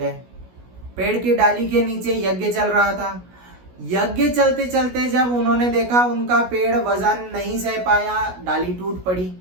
पेड़ की डाली के नीचे यज्ञ चल रहा था। यज्ञ चलते चलते जब उन्होंने देखा उनका पेड़ वजन नहीं सह पाया, डाली टूट पड़ी,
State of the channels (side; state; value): left; late; 16 ms